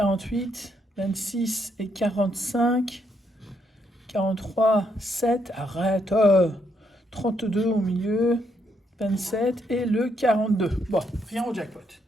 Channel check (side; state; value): both; normal; correlation 0.76